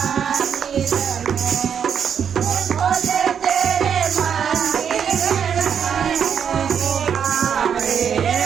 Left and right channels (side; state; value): left; quieter; 7.8 dB